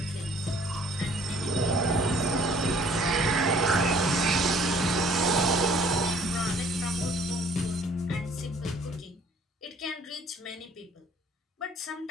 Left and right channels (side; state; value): both; normal; correlation 0.57